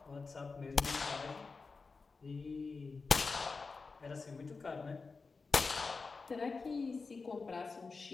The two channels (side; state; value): right; quieter; 4.3 dB